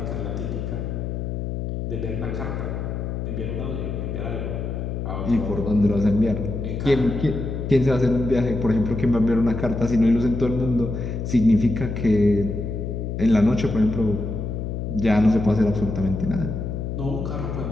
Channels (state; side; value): noise; left; hum, 4 dB below the sound